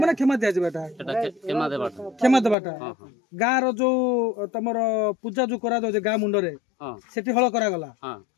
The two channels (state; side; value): drops out; right; at 2.6 s